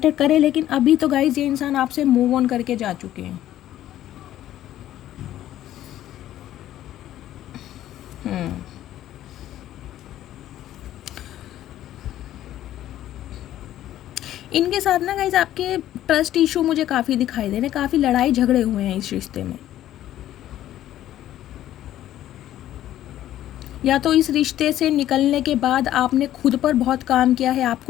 करे, लेकिन अभी तो गाइस ये इंसान आपसे मूव ऑन करके जा चुके हैं। इनके साथ ना गाइज आपके ट्रस्ट इशू मुझे काफ़ी दिखाई दे रहे हैं, काफ़ी लड़ाई झगड़े हुए हैं इस रिश्ते में। या तो इस रिश्ते से निकलने के बाद आपने खुद पर बहुत काम किया है,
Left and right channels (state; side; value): quieter; right; 12.8 dB